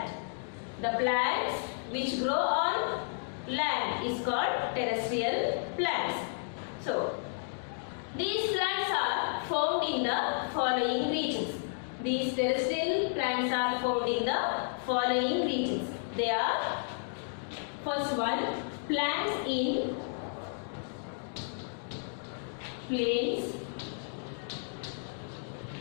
The plants which grow on land is called terrestrial plants. So, these plants are found in the following regions. These terrestrial plants are found in the following regions. They are, first one, plants in plains.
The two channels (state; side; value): silent; right; digital silence